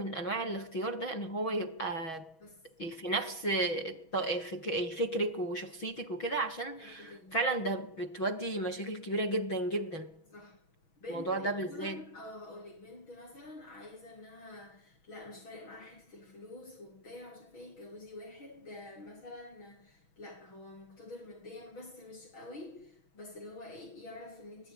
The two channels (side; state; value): right; late; 6.2 ms